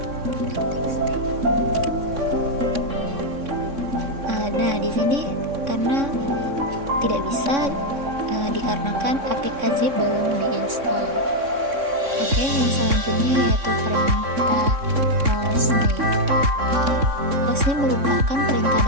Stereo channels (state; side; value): late; left; 3.6 ms